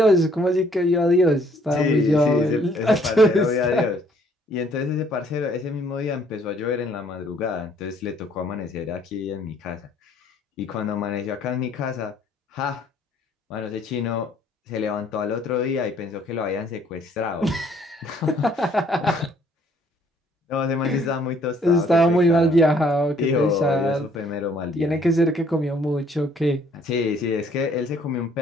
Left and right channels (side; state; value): both; normal; correlation 0.63